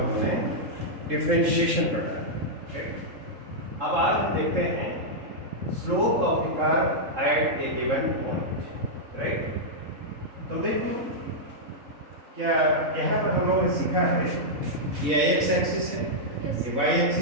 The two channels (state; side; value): late; left; 3.7 ms